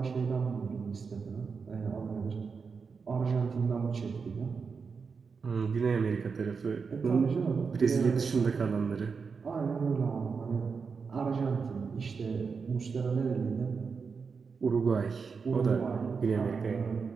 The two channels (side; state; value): left; quieter; 5.3 dB